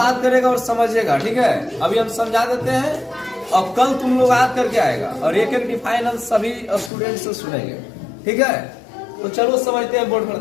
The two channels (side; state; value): right; drops out; at 6.9 s